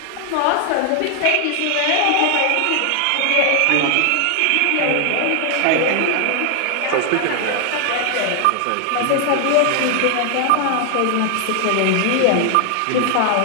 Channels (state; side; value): different; both; correlation 0.00